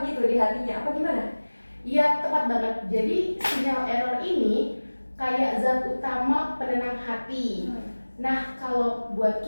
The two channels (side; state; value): both; inverted; correlation -1.00